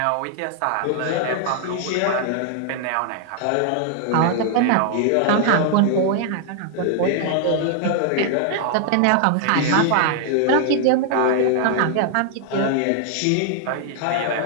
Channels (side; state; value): both; different; correlation 0.00